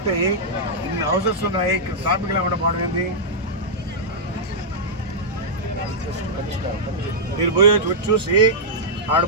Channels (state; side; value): normal; both; correlation -0.09